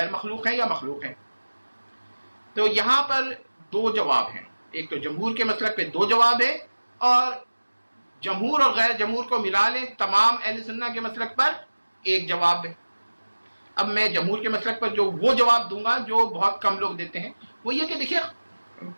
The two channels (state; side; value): inverted; both; correlation -1.00